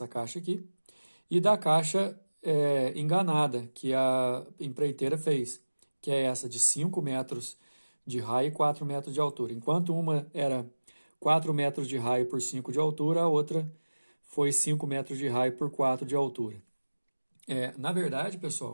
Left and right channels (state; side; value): inverted; both; correlation -1.00